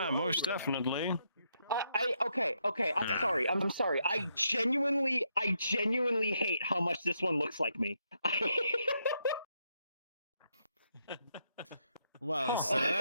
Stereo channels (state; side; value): inverted; both; correlation -0.78